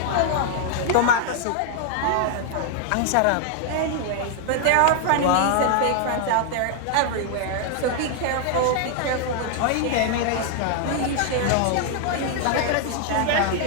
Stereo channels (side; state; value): both; different; correlation 0.00